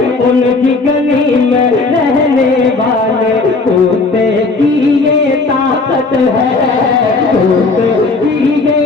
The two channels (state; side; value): quieter; right; 3.7 dB